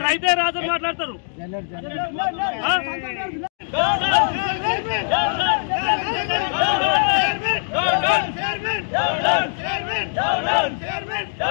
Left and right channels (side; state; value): right; silent; digital silence